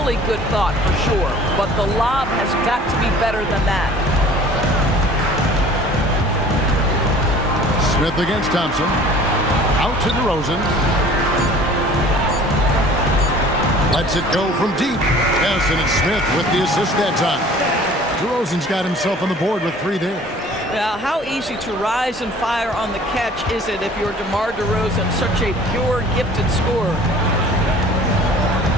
good thought for sure, but the lob has got to be better than that. Smith against Thompson. Out to DeRozan. Lets it go from deep. Yes, and it's Smith with the assist that time. DeRozan's got himself on the board with 3 there. Now, how easy to rise and fire on the catch is it if you're DeMar DeRozan, such a pure, gifted scorer?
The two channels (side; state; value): both; normal; correlation 0.48